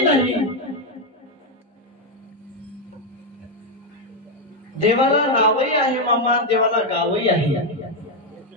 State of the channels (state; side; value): normal; both; correlation 0.04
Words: नाही, देवाला नावही आहे मामा, देवाला गावही आहे.